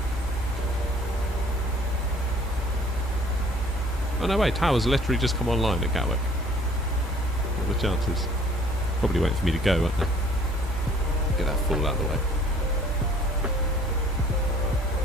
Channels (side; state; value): both; normal; correlation 0.55